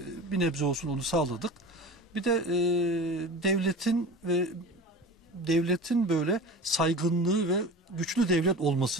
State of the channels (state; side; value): normal; both; correlation 0.34